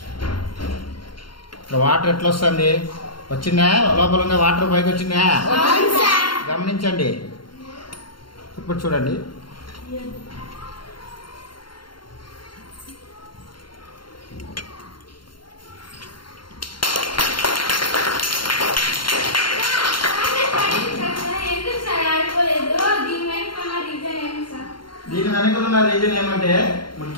వాటర్ ఎట్లా వస్తుంది? వచ్చిందా? లోపల ఉన్న వాటర్ పైకి వచ్చిందా? గమనించండి. ఇప్పుడు చూడండి, దీని వెనక ఉన్న రీజన్ ఏమంటే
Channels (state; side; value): late; right; 0.72 ms